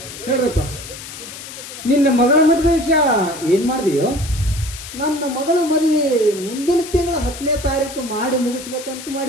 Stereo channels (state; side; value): noise; left; hiss, 12 dB below the sound